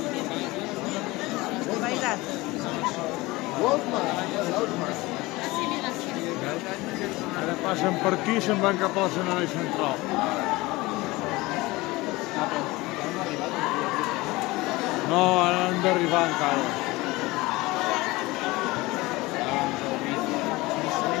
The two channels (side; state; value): right; quieter; 21.2 dB